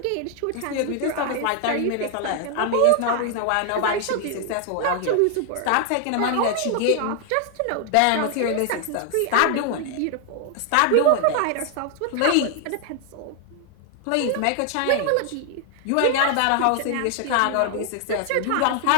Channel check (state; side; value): different; both; correlation 0.00